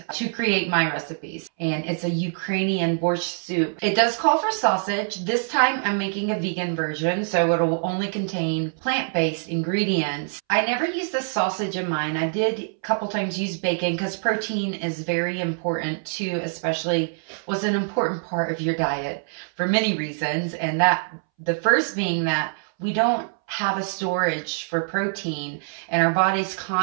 to create my recipes. And it's a Ukrainian borscht soup. It does call for sausage. This time I'm making a vegan version, so it'll only contain plant-based ingredients. I never used the sausage in mine. I did a couple times use bacon because protein is very important too, especially was an important part of your diet for many reasons. And the first being that we don't have a storage for protein, and our body's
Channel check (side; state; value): left; silent; 62 dB below the other